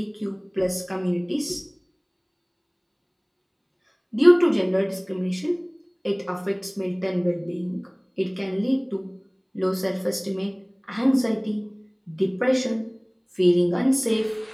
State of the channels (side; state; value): both; identical; correlation 1.00